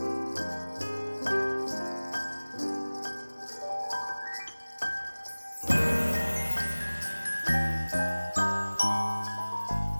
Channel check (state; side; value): inverted; both; correlation -1.00